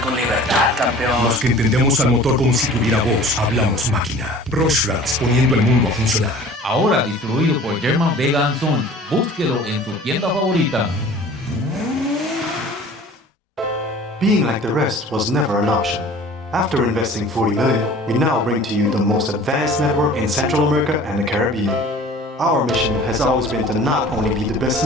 con libertad, campeón. Los que entendemos al motor como si tuviera voz, hablamos máquina. Rorschach, poniendo el mundo a funcionar. Ahora distribuido por German Vega & Sons. Búsquelo en tu tienda favorita. Being like the rest was never an option. After investing $40 million, we now bring to you the most advanced network in Central America and the Caribbean. Our mission has always been to not only be the best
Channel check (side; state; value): both; normal; correlation 0.45